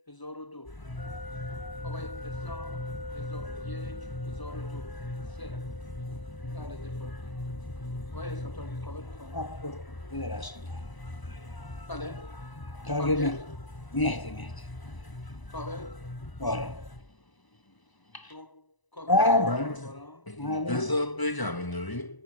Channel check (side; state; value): right; late; 1.0 ms